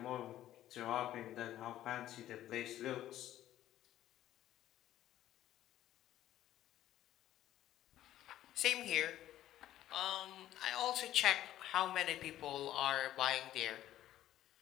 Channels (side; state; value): right; quieter; 13.0 dB